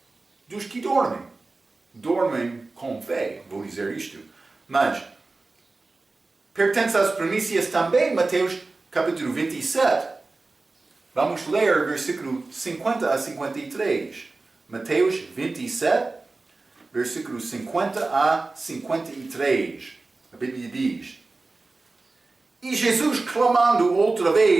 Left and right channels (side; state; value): left; quieter; 3.5 dB